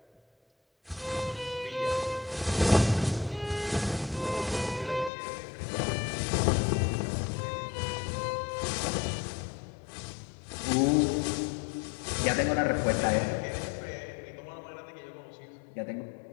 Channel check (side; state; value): right; drops out; at 5.1 s